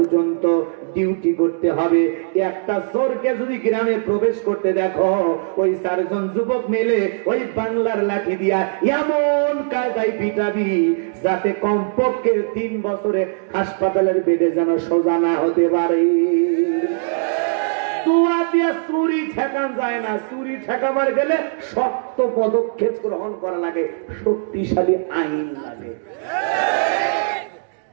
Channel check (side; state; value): left; silent; digital silence